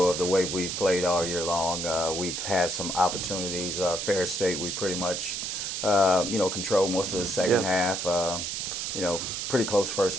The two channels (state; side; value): noise; right; hiss, 3 dB below the sound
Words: of the way we've played all year long. We've had some opportunities. Ferris State, we pretty much, controlled most of the second half. Pretty close first